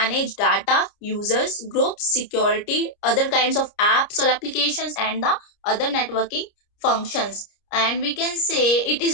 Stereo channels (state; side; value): late; right; 30 ms